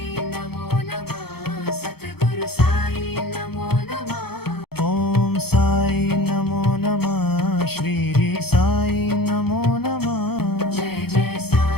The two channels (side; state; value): right; late; 0.96 ms